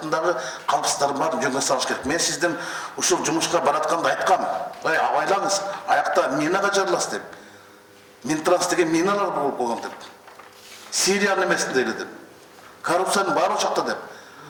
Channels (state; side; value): identical; both; correlation 1.00